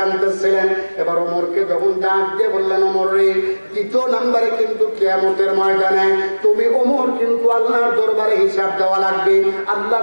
এবার ওমরকে যখন ডাক দিয়ে বললেন, ওমর রে, দ্বিতীয় নম্বরে কিন্তু কিয়ামতের ময়দানে তুমি ওমর কিন্তু আল্লাহর দরবারে হিসাব দেওয়া লাগবে,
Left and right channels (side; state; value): both; inverted; correlation -1.00